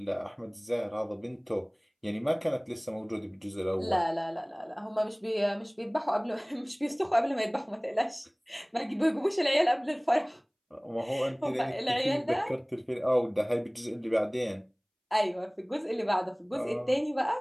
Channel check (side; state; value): both; identical; correlation 1.00